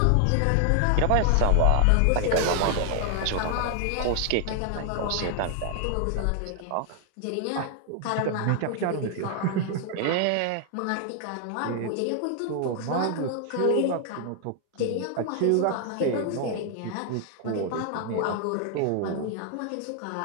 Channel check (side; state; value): both; different; correlation 0.00